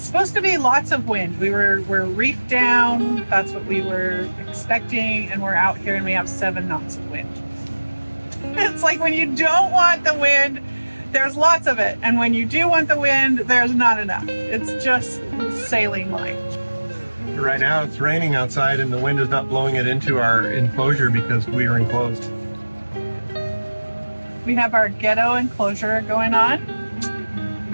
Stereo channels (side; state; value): both; inverted; correlation -1.00